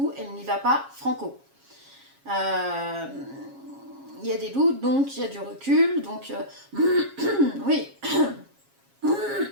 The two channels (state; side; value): late; left; 7.3 ms